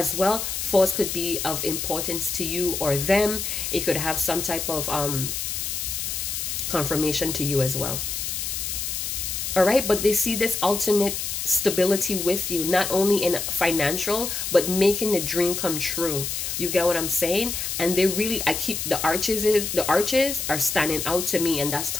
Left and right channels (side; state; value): left; noise; hiss, 3 dB below the sound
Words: well. 4s could be of importance to you or them. It could have some type of confirmation to you as well. All right, but they see this ultimate stability with you, not only in financial, but making the dream come true. You get what I'm saying? And they really, the arches are standing out to me, and that's